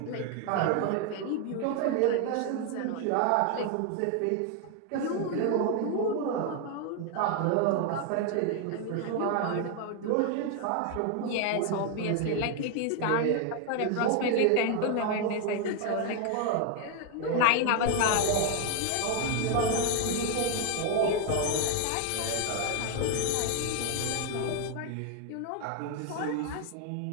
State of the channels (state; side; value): different; both; correlation 0.01